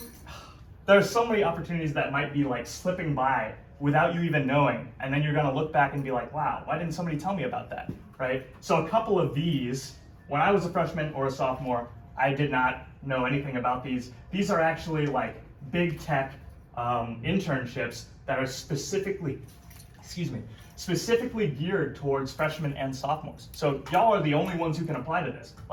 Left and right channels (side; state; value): both; identical; correlation 1.00